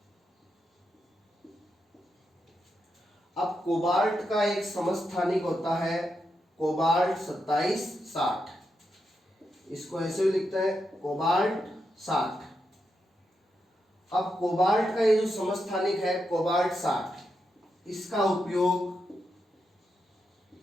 अब कोबाल्ट का एक समस्थानिक होता है कोबाल्ट 2760, इसको ऐसे भी लिखते हैं कोबाल्ट 60। अब कोबाल्ट का ये जो समस्थानिक है कोबाल्ट 60, इसका उपयोग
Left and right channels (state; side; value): normal; both; correlation 0.85